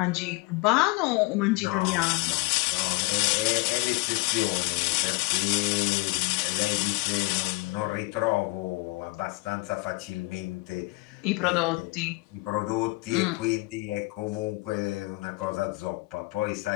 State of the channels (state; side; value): quieter; right; 24.6 dB